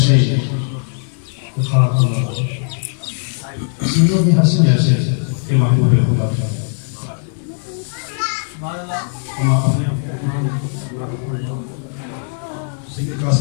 سنوں میں حسن ایسے کہ محبوب خدا ہم اپنے سید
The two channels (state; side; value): silent; right; digital silence